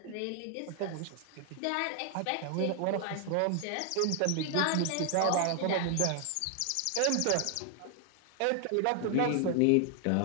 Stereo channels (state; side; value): different; both; correlation 0.00